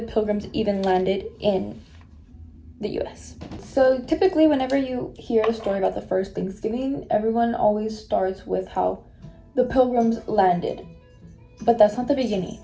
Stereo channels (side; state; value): both; identical; correlation 1.00